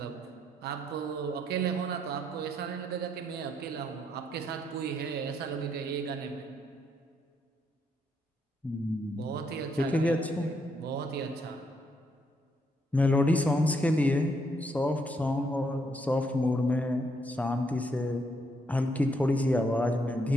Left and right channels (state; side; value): normal; both; correlation 0.74